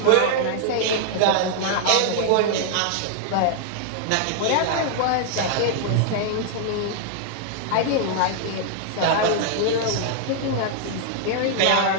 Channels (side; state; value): both; different; correlation -0.01